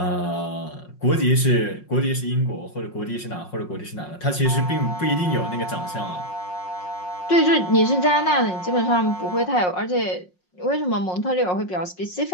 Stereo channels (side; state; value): right; late; 5.5 ms